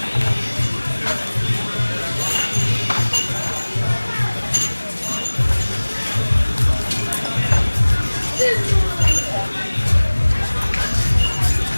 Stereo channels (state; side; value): inverted; both; correlation -1.00